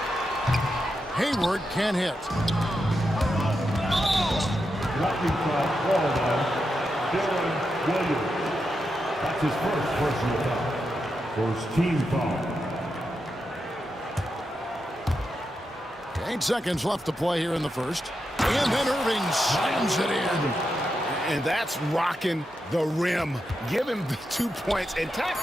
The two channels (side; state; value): both; normal; correlation 0.86